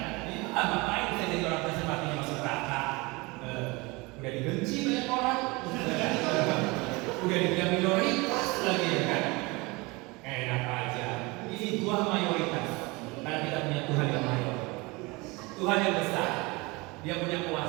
Ini ngapain saya jadi orang Kristen matinya masuk neraka? Udah dibenci banyak orang, udah dibilang minoritas lagi ya kan? Enak aja. Ini Tuhan mayoritas. Karena kita punya Tuhan yang mayor, Tuhan yang besar, Dia punya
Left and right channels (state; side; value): quieter; left; 25.0 dB